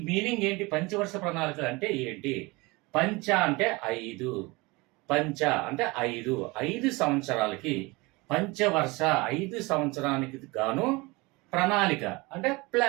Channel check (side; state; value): left; quieter; 24.2 dB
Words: మీనింగ్ ఏంటి? పంచవర్ష ప్రణాళికలు అంటే ఏంటి? పంచ అంటే 5, పంచ అంటే 5 సంవత్సరాలకి పంచవర్ష 5 సంవత్సరానికి గాను ప్రణాళిక అంటే